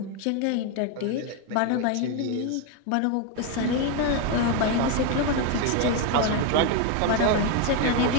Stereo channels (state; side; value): different; both; correlation 0.02